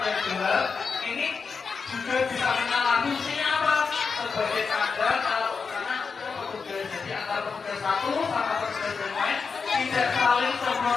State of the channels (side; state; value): right; quieter; 5.2 dB